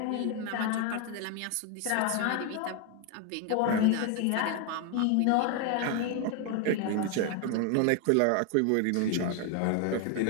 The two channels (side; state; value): both; different; correlation 0.01